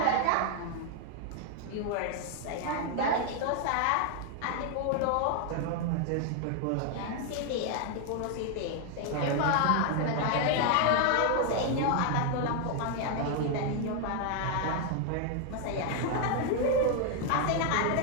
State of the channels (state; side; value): different; both; correlation 0.00